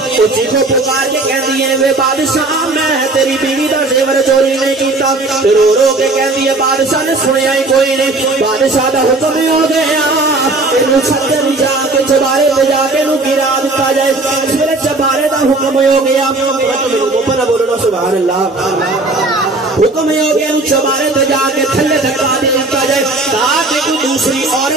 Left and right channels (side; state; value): left; quieter; 3.1 dB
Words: وہ چیخو پکار کے کہندی ہے وے بادشاہ میں تیری بیوی دا زیور چوری نہیں کیتا رو رو کے کہندی ہے بادشاہ نے سنیا ہی کوئی نہیں بادشاہ دا حکم ہی ہو گیا اینو چھتر جا کے چبارے تے جا کے نو گرا دتا جائے اس ویلے چبارے دا حکم ہو گیا اوپر بولو سبحان اللہ حکم ہو گیا نو چبارے تے جا کے تھلے دھکا دتا جائے تاکہ کوئی دوسری